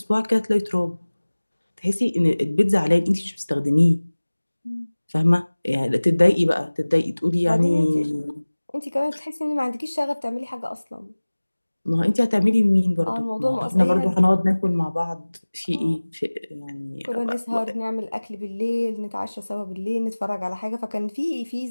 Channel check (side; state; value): both; inverted; correlation -1.00